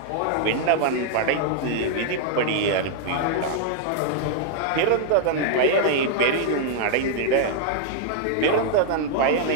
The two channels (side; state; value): both; different; correlation -0.01